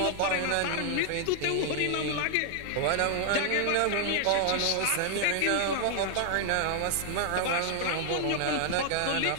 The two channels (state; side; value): different; both; correlation 0.00